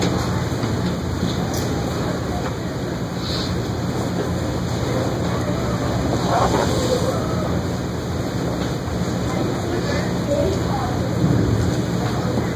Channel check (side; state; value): both; identical; correlation 1.00